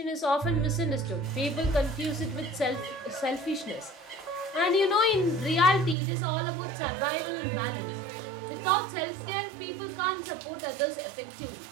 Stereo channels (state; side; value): drops out; left; at 6.0 s